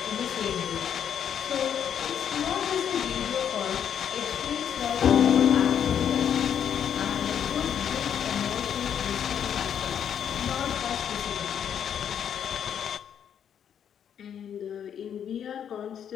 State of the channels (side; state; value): right; quieter; 8.7 dB